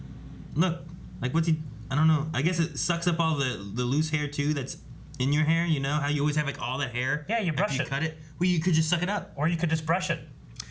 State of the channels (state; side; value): identical; both; correlation 1.00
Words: look, like, what's he, I don't know. I guess it sucks up all the loose hair, too, that's in your hair, you know? How you always have, like, all that hair? Yeah, you brush after you cut it. Well, you could just suck it up. Or you could just brush it.